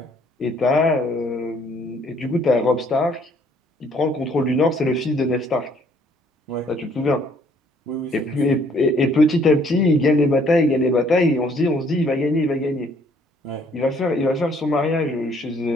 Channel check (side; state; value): both; normal; correlation 0.63